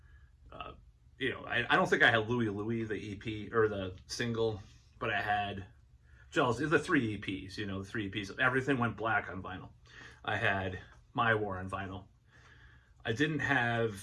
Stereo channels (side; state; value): both; identical; correlation 1.00